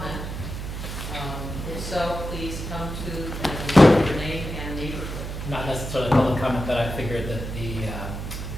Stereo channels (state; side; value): noise; right; hum, 6 dB below the sound